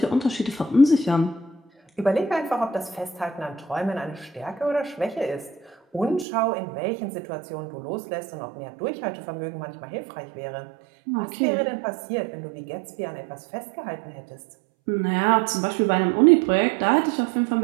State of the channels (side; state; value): left; drops out; at 6.2 s